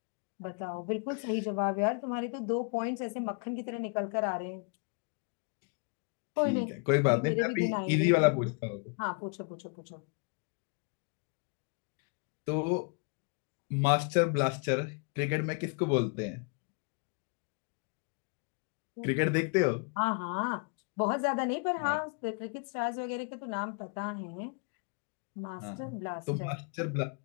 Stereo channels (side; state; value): right; quieter; 36.2 dB